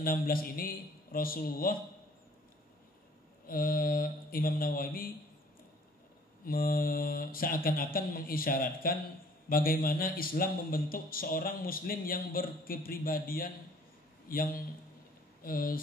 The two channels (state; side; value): normal; both; correlation 0.56